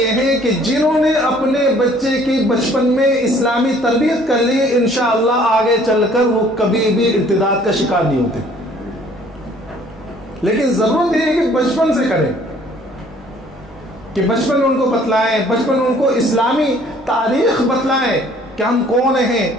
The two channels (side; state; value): both; normal; correlation 0.57